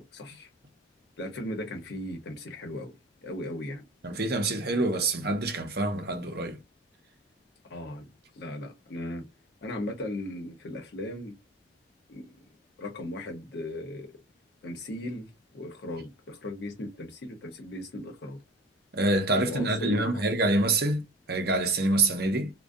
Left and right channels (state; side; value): normal; both; correlation 0.41